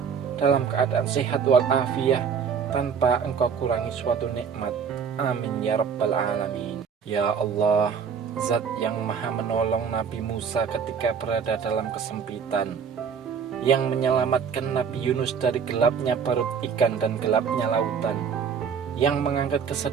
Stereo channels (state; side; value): quieter; left; 6.7 dB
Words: dalam keadaan sehat walafiat tanpa engkau kurangi suatu nikmat. Amin ya rabbal alamin. Ya Allah, Zat yang maha menolong Nabi Musa ketika berada dalam kesempitan, yang menyelamatkan Nabi Yunus dari gelapnya perut ikan dan gelapnya lautan, yang mengangkat